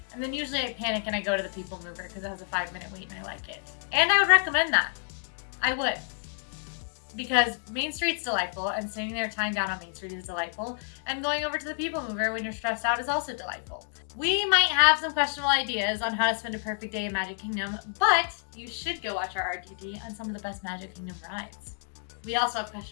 And then usually I panic and I go to the People Mover because it has a 5-minute wait and I like it. And I would recommend that. I would. Because Main Street's delightful and sitting there tying down on Main Street is delightful. And going over to the People Mover when you're stressed out is also delightful. We might have some questionable ideas on how to spend a perfect day in Magic Kingdom, but you should go watch our RTT on some of the best Magic Kingdom rides. We also have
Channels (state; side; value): silent; right; 59 dB below the other